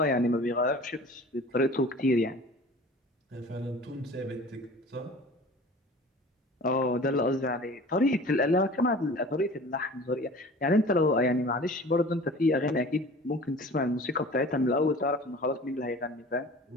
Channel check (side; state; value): both; normal; correlation 0.42